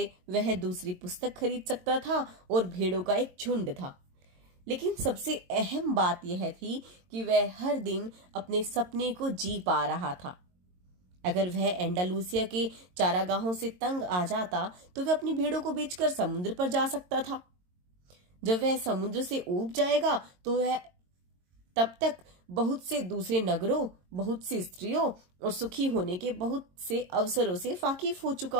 वह दूसरी पुस्तक खरीद सकता था और भेड़ों का एक झुंड था। लेकिन सबसे अहम बात यह थी कि वह हर दिन अपने सपने को जी पा रहा था। अगर वह एंडालूसिया के चारागाहों से तंग आ जाता तो वह अपनी भेड़ों को बेचकर समुद्र पर जा सकता था। जब वह समुद्र से ऊब जाएगा तो वह तब तक बहुत से दूसरे नगरों, बहुत सी स्त्रियों और सुखी होने के बहुत से अवसरों से वाकिफ हो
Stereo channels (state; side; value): late; left; 22 ms